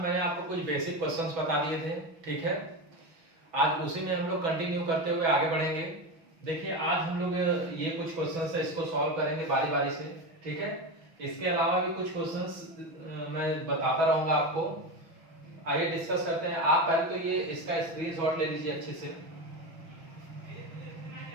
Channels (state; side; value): late; left; 6.1 ms